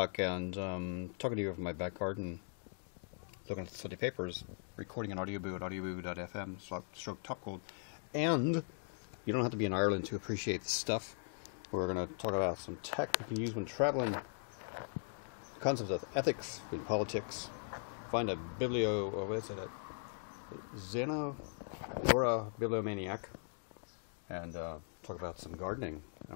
and talking to you from my back garden, looking at the Sunday papers, recording an audioboo at audioboo.fm, stroke topgold. And you don't have to be in Ireland to appreciate this stuff. We're going to talk about some tech you can use when traveling, concepts of ethics in politics, find a Xenogora bibliomaniac, and talk about some gardening,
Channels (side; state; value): right; silent; digital silence